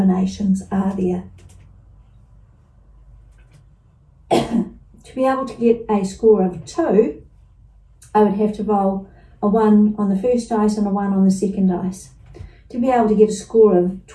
are there? To be able to get a score of 2, I would have to roll a 1 on the first dice and a 1 on the second dice. To be able to get a score of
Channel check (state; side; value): identical; both; correlation 1.00